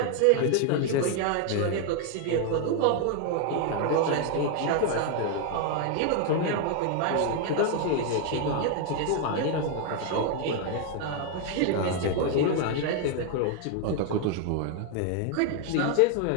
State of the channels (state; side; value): different; both; correlation 0.01